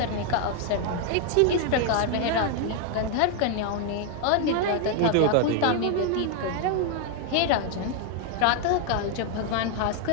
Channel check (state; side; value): different; both; correlation 0.00